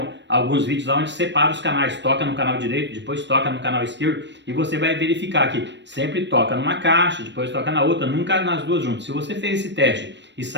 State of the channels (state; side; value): late; left; 0.52 ms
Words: alguns vídeos lá onde separa os canais, toca no canal direito, depois toca no canal esquerdo, e você vai verificar que sempre toca numa caixa, depois toca na outra, nunca nas duas juntas. Se você fez esse teste e